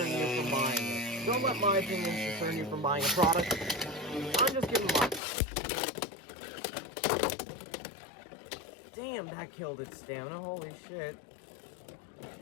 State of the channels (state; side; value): drops out; right; at 5.2 s